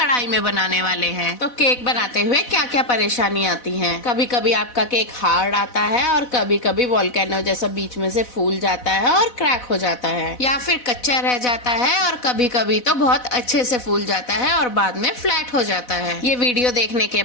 में बनाने वाले हैं। तो केक बनाते हुए क्या क्या परेशानी आती है? कभी कभी आपका केक हार्ड आता है और कभी कभी वोल्केनो जैसा बीच में से फूल जाता है और क्रैक हो जाता है, या फिर कच्चा रह जाता है, और कभी कभी तो बहुत अच्छे से फूल जाता है और बाद में फ्लैट हो जाता है। ये वीडियो देखने के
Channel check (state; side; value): late; right; 4.1 ms